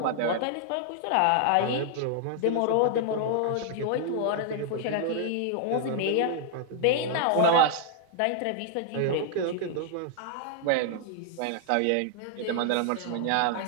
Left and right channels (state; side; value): different; both; correlation -0.01